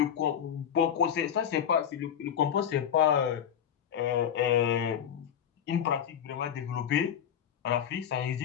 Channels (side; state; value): right; quieter; 9.0 dB